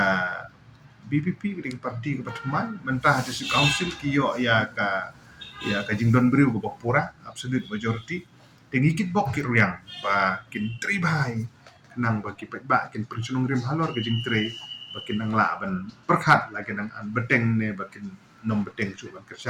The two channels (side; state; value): both; identical; correlation 1.00